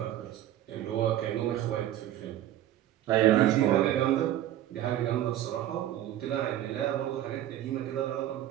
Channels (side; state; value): left; quieter; 12.6 dB